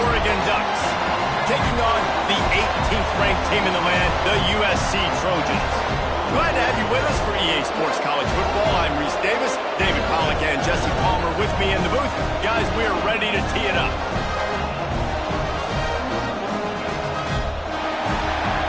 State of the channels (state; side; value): identical; both; correlation 1.00